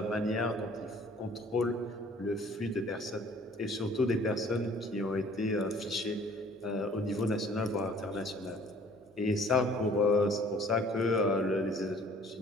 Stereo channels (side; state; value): both; normal; correlation 0.54